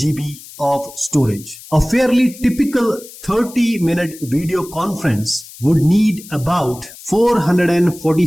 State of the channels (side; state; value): left; noise; hiss, 18 dB below the sound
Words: of storage. A fairly typical 30-minute video conference would need about